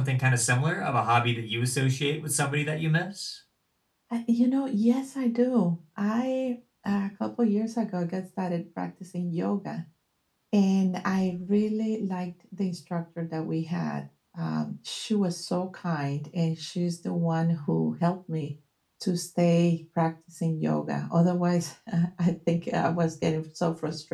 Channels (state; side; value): identical; both; correlation 1.00